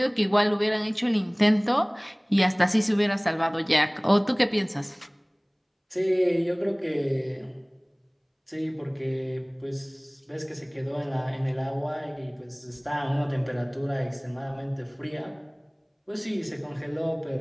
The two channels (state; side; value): identical; both; correlation 1.00